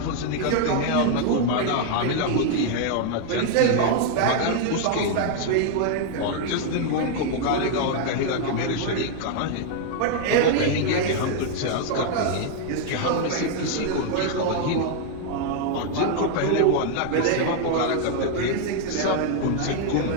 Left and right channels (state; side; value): different; both; correlation 0.00